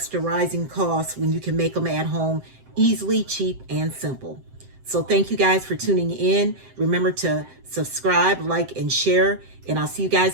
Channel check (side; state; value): left; late; 7.7 ms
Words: rising costs when you can make them at home easily, cheap, and simple? So thank you guys for tuning in. Remember to subscribe, like, and share. And I'll see you